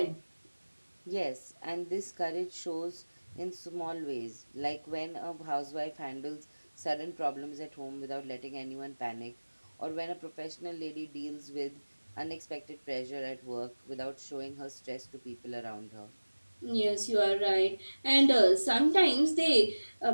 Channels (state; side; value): inverted; both; correlation -1.00